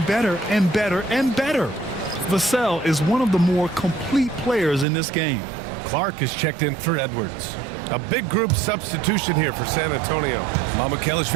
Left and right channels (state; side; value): drops out; left; at 4.9 s